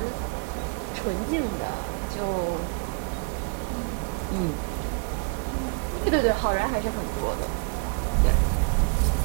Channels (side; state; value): left; quieter; 37.4 dB